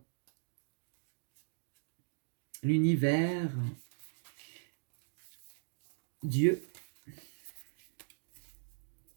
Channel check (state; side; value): silent; left; digital silence